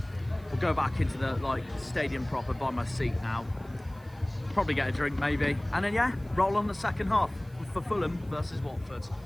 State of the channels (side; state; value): right; noise; hiss, 28 dB below the sound